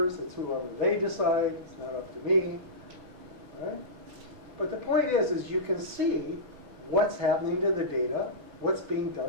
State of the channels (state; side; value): late; left; 6.0 ms